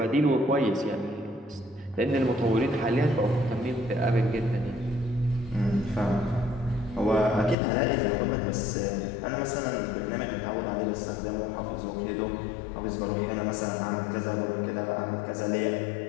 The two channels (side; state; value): right; drops out; at 7.6 s